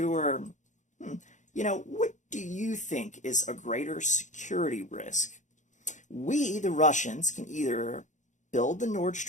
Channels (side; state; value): right; late; 0.35 ms